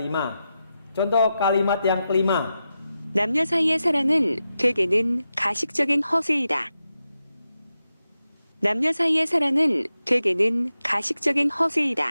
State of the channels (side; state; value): both; inverted; correlation -0.90